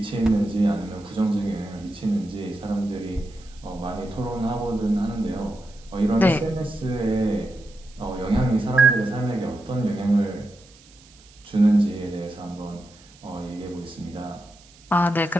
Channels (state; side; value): noise; right; hiss, 26 dB below the sound